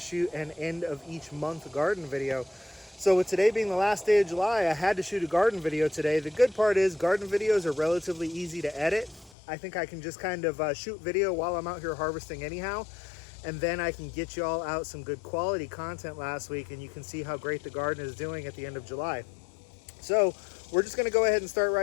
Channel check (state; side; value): drops out; right; at 9.3 s